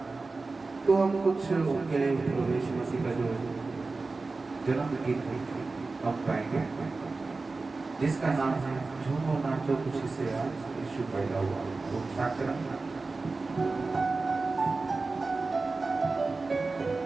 तो हम कुछ उनके लिए प्रवेश मसीह का जो जन्म गीत हम गाएंगे जिसका नाम है झूमो नाचो खुशी से आज यीशु पैदा हुआ। तो स्टार्ट करें।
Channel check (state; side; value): quieter; left; 3.7 dB